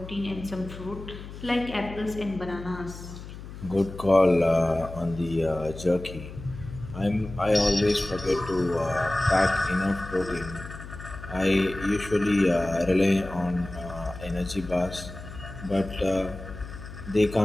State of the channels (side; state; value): left; noise; hum, 13 dB below the sound